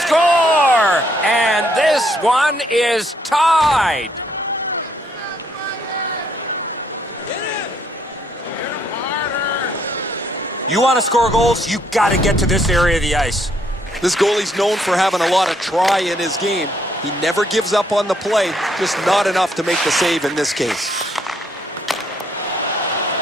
Score! And this one is tied. You want to score goals, you got to get to this area of the ice. This goalie's known for having a lot of try in his game. He never gives up on the play, just not enough to make the save in this case.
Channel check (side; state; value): both; normal; correlation 0.70